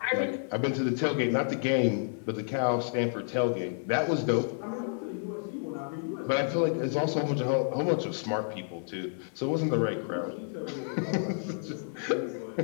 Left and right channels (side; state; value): right; silent; 58 dB below the other